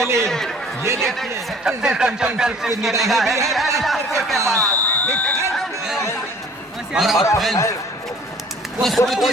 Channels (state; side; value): normal; both; correlation 0.51